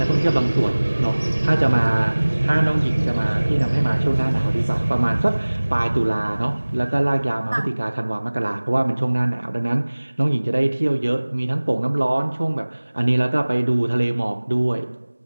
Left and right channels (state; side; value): inverted; both; correlation -1.00